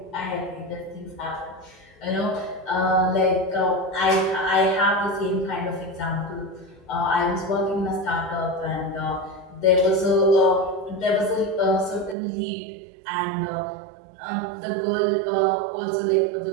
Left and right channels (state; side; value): drops out; left; at 12.2 s